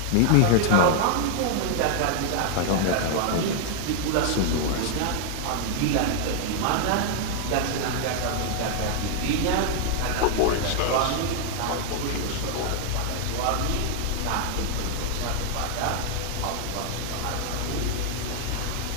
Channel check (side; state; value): both; different; correlation 0.00